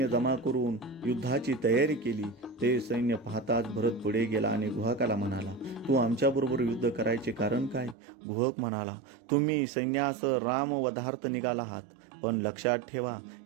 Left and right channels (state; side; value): drops out; left; at 8.0 s